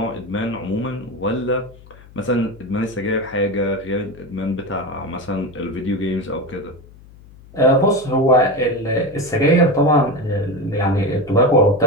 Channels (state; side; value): noise; left; hum, 22 dB below the sound